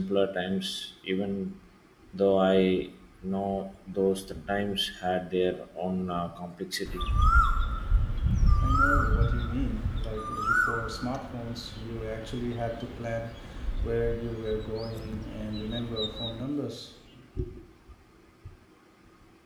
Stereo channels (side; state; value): both; identical; correlation 1.00